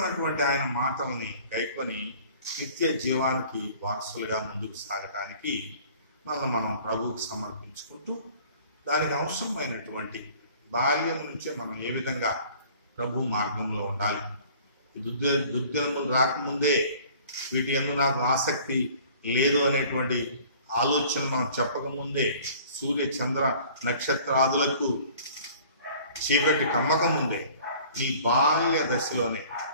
ఆయన మాటల్ని గైకొని నిత్య జీవానికి వారసులుగా ముందుకు సాగటానికి మనం ప్రభువుకు సమర్పించుకుంటూ దానికి అవసరమైనటువంటి బాల్యం నుంచే మనం ఏ విధంగా ప్రభు మార్గంలో ఉండాలి, దుర్దినములు రాకముందే వీటి యందు నాకు ఆసక్తి లేదు అనేటువంటి ఆలోచన మనం చెప్పకముందే, సూర్య చంద్ర నక్షత్రాదులకు చీకటి కమ్మక ముందే, నీ బాల్య దశలోనే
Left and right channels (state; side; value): inverted; both; correlation -0.50